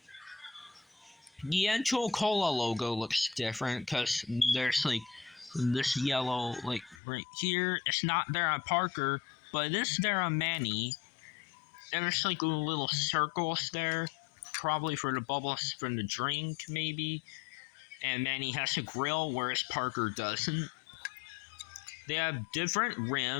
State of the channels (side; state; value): right; drops out; at 7.0 s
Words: The N2O Cola logo looks different because there's this yellow right here. It's not there on Parker, but it is there on Manny. And there's little circles there, probably for the bubbles from the drink maybe. And Manny has a grill, whereas Parker doesn't. They have different